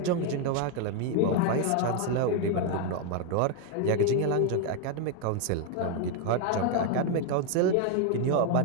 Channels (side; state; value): both; different; correlation 0.01